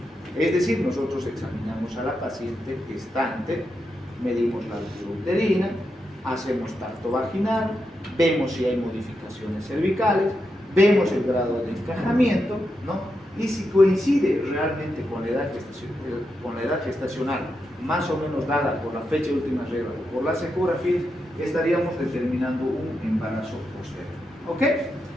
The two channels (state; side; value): normal; both; correlation 0.85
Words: Es decir, nosotros examinamos a la paciente gestante, medimos la altura uterina, hacemos tacto vaginal, vemos si hay modificaciones cervicales, vemos el grado de encajamiento, ¿no? Y si coincide realmente con la edad gestacional, más o menos dada por la fecha de última regla o por las ecografías, estaríamos determinando un embarazo posterior. ¿Ok?